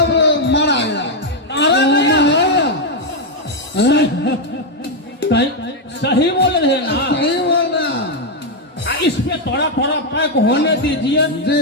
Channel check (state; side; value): normal; both; correlation 0.01